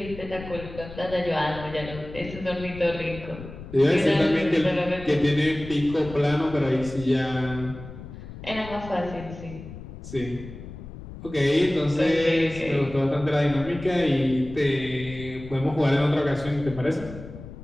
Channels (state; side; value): noise; left; rumble, 13 dB below the sound